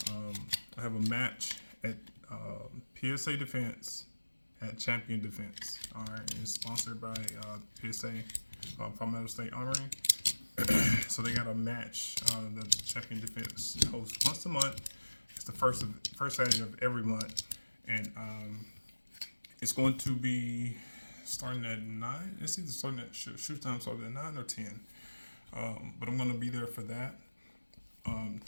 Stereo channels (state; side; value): inverted; both; correlation -1.00